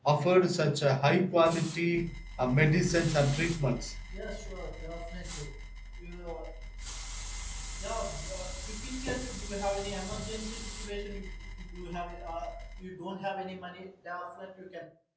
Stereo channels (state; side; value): identical; both; correlation 1.00